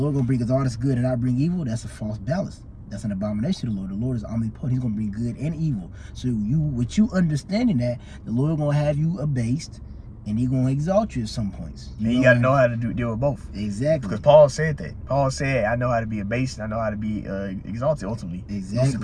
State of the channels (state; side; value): identical; both; correlation 1.00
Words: going to bring us all this good and not bring evil. That's a false balance. That's an abomination to the Lord. The Lord is omnipotent. He's going to bring good and evil. So with you understanding that, the Lord going to have you abased, and he's going to exalt you at some points. You got to know how to deal with both. Exactly. Because Paul said that. Paul said, I know how to be abased, and I know how to be exalted ultimately. Exactly. To